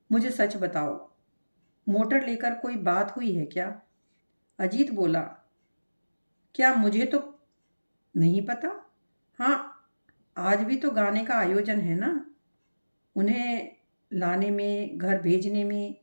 मुझे सच बताओ, मोटर लेकर कोई बात हुई है क्या? अजीत बोला, क्या मुझे तो नहीं पता। हाँ, आज भी तो गाने का आयोजन है ना। उन्हें लाने में, घर भेजने में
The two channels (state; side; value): inverted; both; correlation -1.00